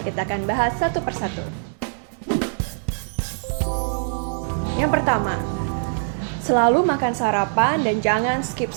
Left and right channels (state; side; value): silent; left; digital silence